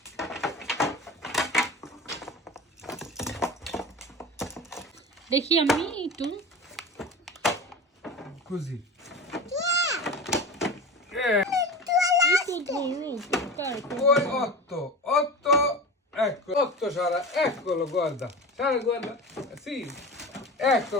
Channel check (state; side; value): normal; both; correlation 0.30